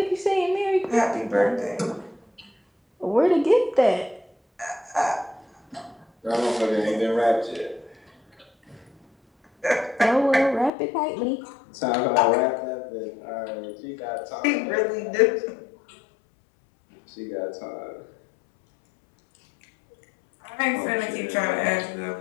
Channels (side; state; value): right; drops out; at 10.7 s